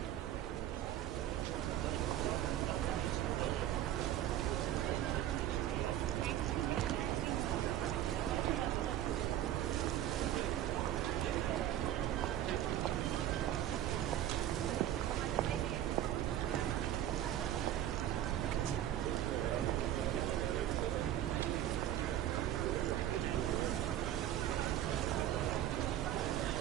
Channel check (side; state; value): left; quieter; 12.1 dB